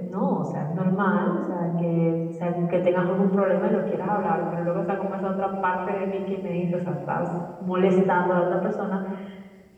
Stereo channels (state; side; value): identical; both; correlation 1.00